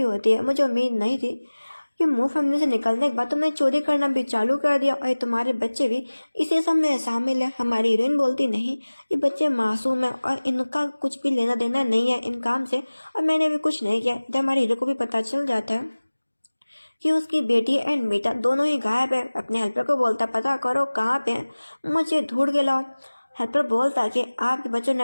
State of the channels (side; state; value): both; inverted; correlation -1.00